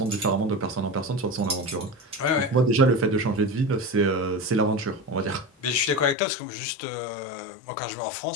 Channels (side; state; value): right; drops out; at 6.2 s